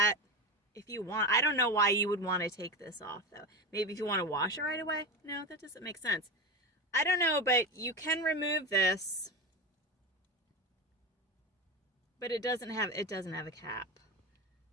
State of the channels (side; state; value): both; normal; correlation 0.21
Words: if you want. I don't know why you would want to take this off, though. Maybe if you want to wash it right away? No, that doesn't make sense. I don't know, but you can remove this. But it doesn't have a cap.